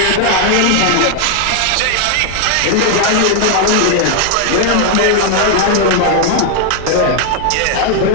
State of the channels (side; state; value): both; different; correlation 0.00